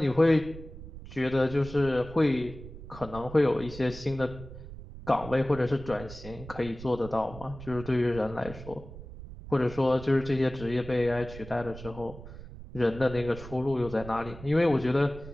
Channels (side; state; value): right; noise; rumble, 14 dB below the sound